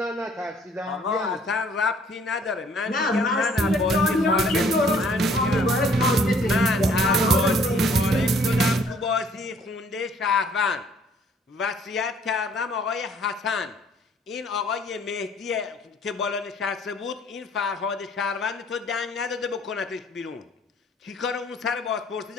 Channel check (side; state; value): both; normal; correlation 0.60